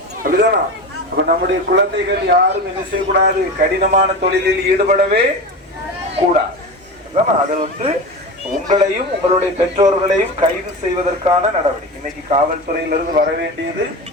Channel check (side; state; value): both; normal; correlation 0.26